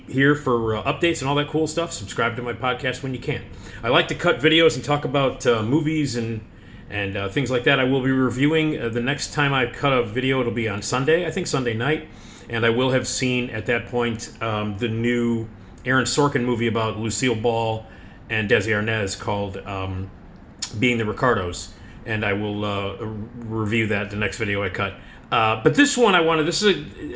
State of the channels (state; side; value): identical; both; correlation 1.00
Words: here for updates and all that cool stuff. Subscribe to my podcast when you can. I like to cut videos and talk about movies and things like that. I will be reviewing the next time I cut a video. It'll be on Sunday, I think Sunday night, and I will have seen at that point the new Aaron Sorkin movie about Lucille Ball and Desi Arnaz called Being the Ricardos, and I will review that the next video I cut. But this one I